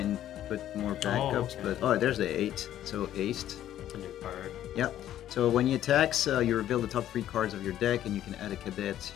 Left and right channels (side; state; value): right; quieter; 11.9 dB